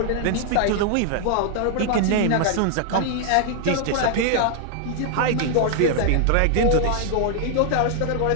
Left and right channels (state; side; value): different; both; correlation 0.00